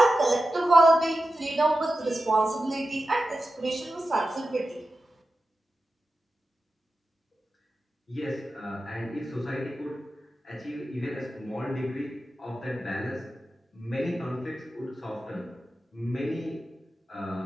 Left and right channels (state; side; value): normal; both; correlation 0.92